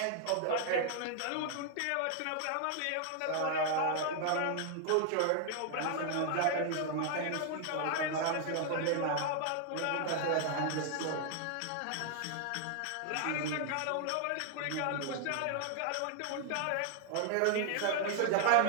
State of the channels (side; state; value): both; different; correlation 0.00